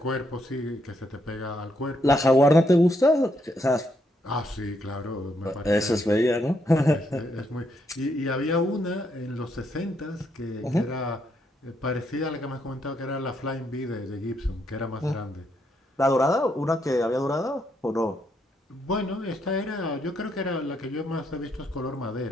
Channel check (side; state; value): both; normal; correlation 0.76